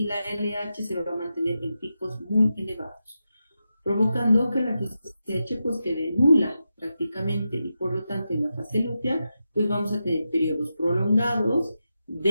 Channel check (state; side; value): inverted; both; correlation -0.89